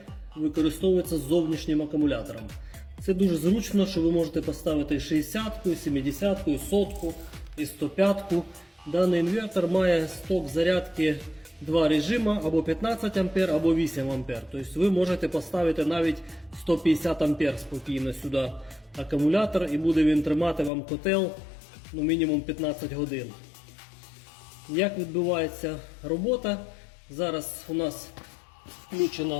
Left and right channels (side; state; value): right; drops out; at 20.7 s